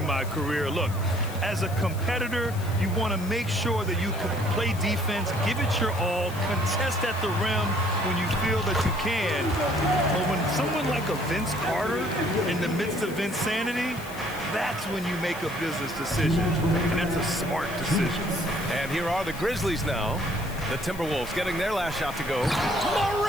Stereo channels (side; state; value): left; noise; hiss, 16 dB below the sound